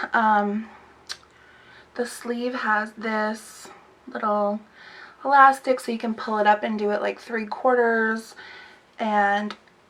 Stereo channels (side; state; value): both; identical; correlation 1.00